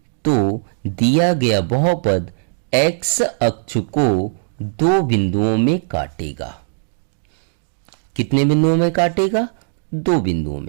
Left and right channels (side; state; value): left; silent; digital silence